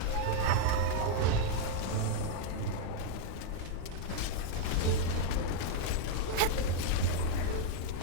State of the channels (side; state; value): both; different; correlation 0.00